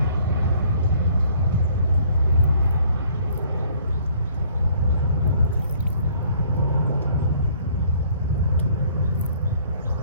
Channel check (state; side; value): inverted; both; correlation -0.58